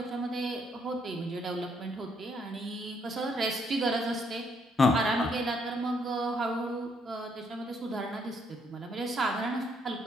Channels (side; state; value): both; normal; correlation 0.71